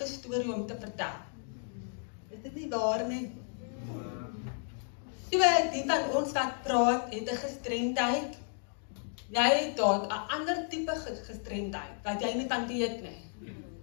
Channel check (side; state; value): right; silent; 56 dB below the other